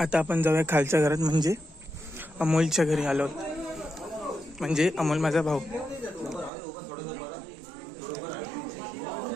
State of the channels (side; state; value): left; drops out; at 6.5 s